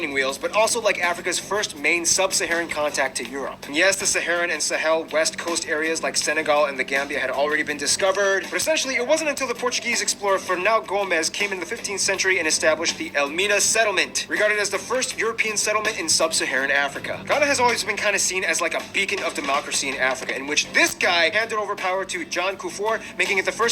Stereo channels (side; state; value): both; identical; correlation 1.00